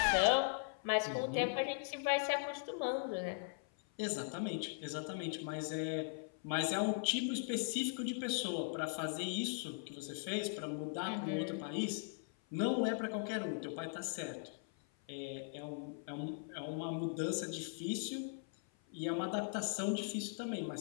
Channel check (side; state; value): right; silent; 51 dB below the other